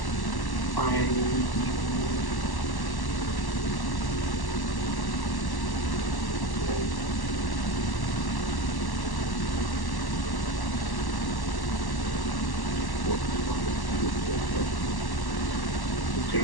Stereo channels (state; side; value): late; right; 1.1 ms